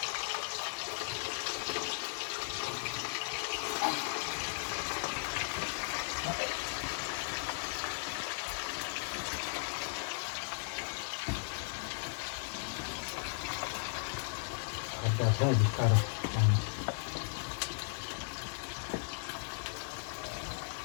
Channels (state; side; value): silent; right; 53 dB below the other